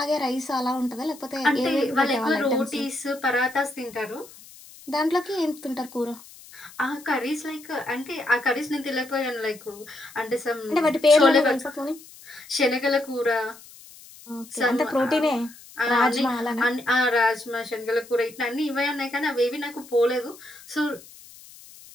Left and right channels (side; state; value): left; noise; hiss, 20 dB below the sound